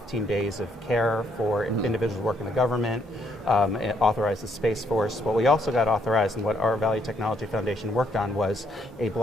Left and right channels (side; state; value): both; normal; correlation 0.71